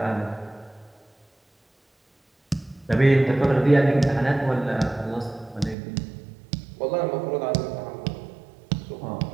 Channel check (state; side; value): drops out; left; at 5.8 s